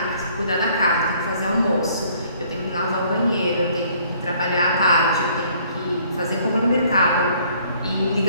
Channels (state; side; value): inverted; both; correlation -0.61